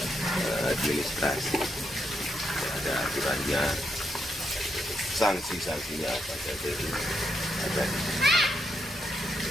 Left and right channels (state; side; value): normal; both; correlation 0.80